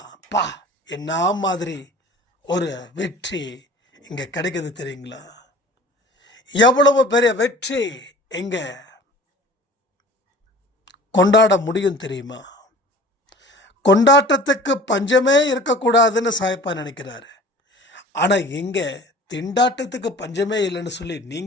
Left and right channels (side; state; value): both; normal; correlation 0.44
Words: என்ன மாதிரி ஒரு வெற்றி இங்கே கிடைக்குது தெரியுங்களா? எவ்வளவு பெரிய வெற்றி இங்கே கொண்டாட முடியும் தெரியுமா? கொண்டாட்டத்துக்கு பஞ்சமே இருக்கக்கூடாதுன்னு சாயப்பா நினைக்கிறாரு. ஆனால் இங்கே திண்டாட்டத்துக்கு பஞ்சமே இல்லைன்னு சொல்லி